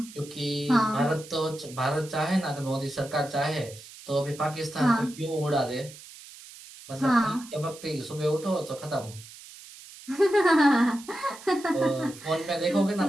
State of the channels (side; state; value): right; noise; hiss, 18 dB below the sound